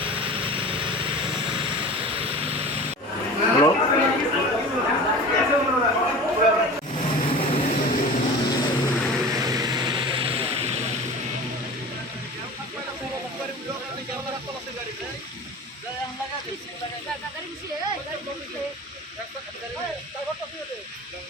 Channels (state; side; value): normal; both; correlation 0.36